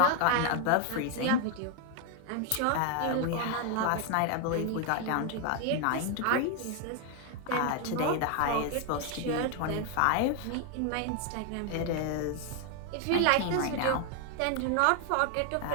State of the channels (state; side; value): different; both; correlation 0.00